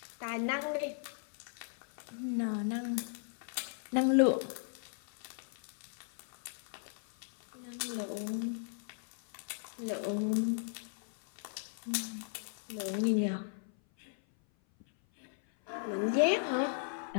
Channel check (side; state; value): right; silent; 53 dB below the other